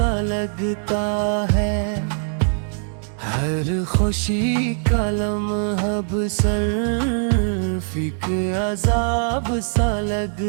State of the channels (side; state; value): left; silent; 65 dB below the other